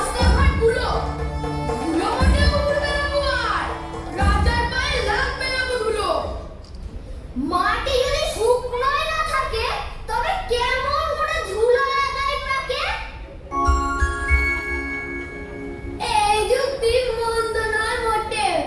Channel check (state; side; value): identical; both; correlation 1.00